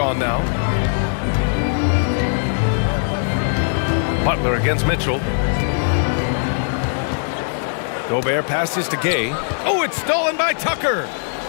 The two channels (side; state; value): right; silent; digital silence